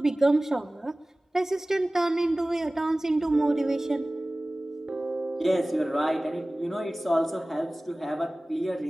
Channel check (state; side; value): normal; both; correlation 0.98